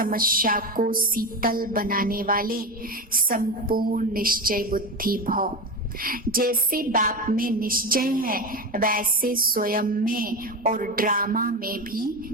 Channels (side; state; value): both; normal; correlation 0.20